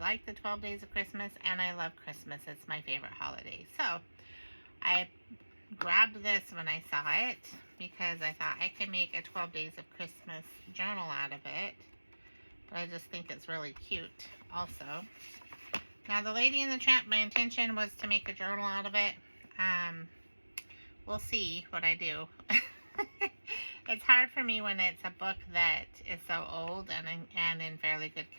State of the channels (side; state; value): both; inverted; correlation -1.00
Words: the 12 Days of Christmas, and I love Christmas. It's my favorite holiday. So I grabbed this when I saw it because I thought I could make a 12 Days of Christmas journal out of it. But I just think it's really cute also. Now, the Lady and the Tramp, my intention was to make a journal out of it. We'll see what I do. It's hard for me when it's a book that is so old and in fairly good